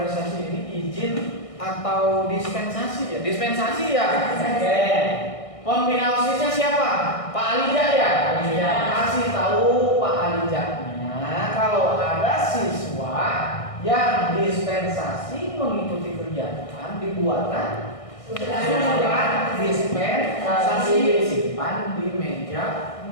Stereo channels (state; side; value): late; right; 1.6 ms